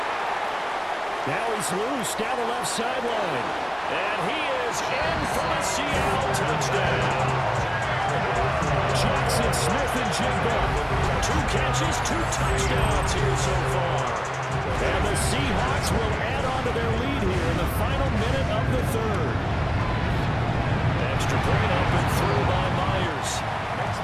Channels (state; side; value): identical; both; correlation 1.00